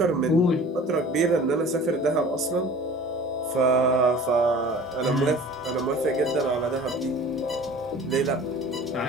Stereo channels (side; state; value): both; normal; correlation 0.44